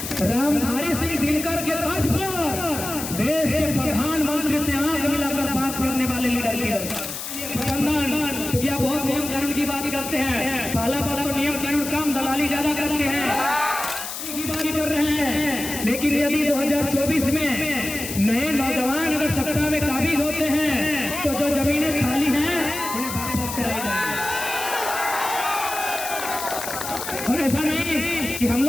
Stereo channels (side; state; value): left; noise; hiss, 7 dB below the sound